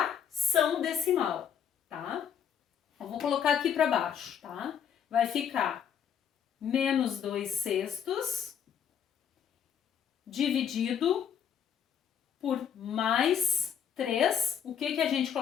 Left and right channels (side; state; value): right; quieter; 8.3 dB